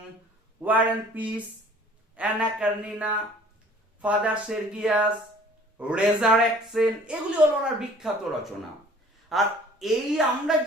War and Peace, Anna Karenina, Father Sergius, Resurrection, এগুলি হলো ওনার বিখ্যাত রচনা। আর এই আমরা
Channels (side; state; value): both; normal; correlation 0.51